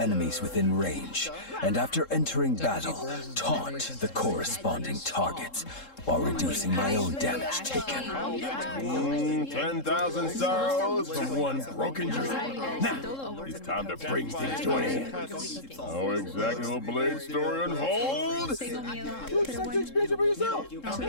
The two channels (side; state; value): right; late; 3.7 ms